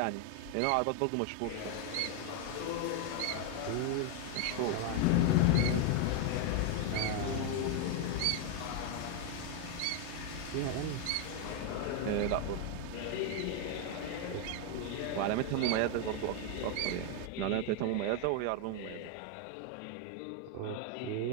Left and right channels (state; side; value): different; both; correlation 0.01